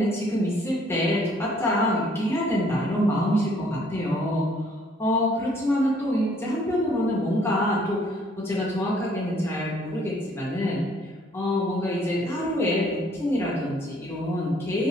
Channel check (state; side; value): normal; both; correlation 0.62